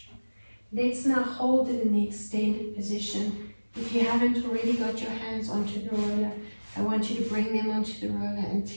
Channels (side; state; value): both; inverted; correlation -1.00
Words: Let's now hold it in the extended position. If you haven't already got your hands onto the roller, I want you to bring them onto the roller and